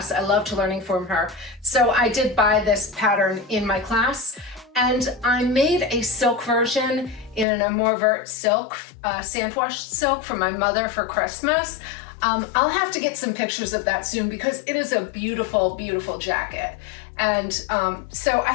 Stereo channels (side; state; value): right; drops out; at 7.5 s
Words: I loved learning from her. So I did buy this pattern in my class and I made a silk version in an Amour Vert silk, sandwashed silk for my mother for Christmas. I'll have to get some pictures of that soon because it is a beautiful, beautiful jacket. And so